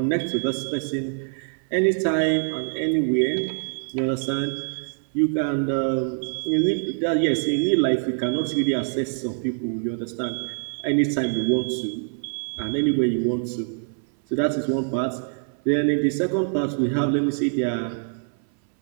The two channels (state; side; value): silent; left; 59 dB below the other